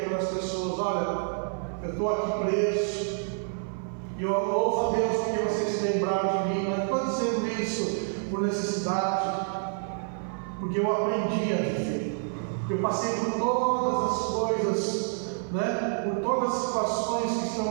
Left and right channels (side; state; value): left; silent; 55 dB below the other